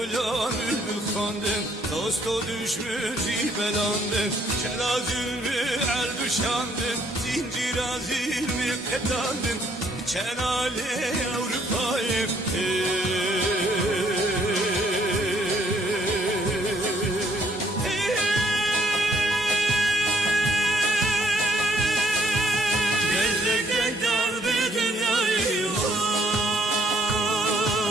bülbül kandım, dosto düşmüş belandım. Celazülmü el düşandım, zincir azilmi petandım. Çenale Avrupa'yım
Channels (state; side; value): normal; both; correlation 0.67